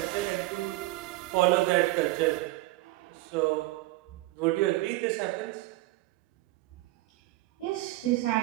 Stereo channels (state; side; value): quieter; left; 18.8 dB